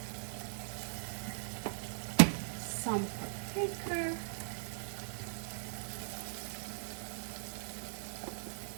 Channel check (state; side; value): silent; left; digital silence